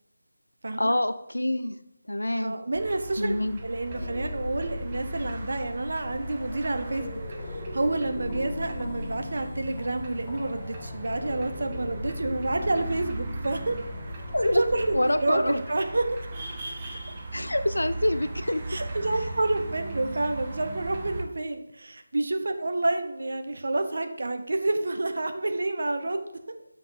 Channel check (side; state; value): both; inverted; correlation -0.96